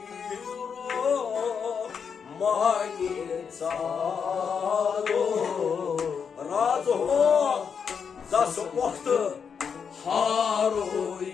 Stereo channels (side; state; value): right; quieter; 6.6 dB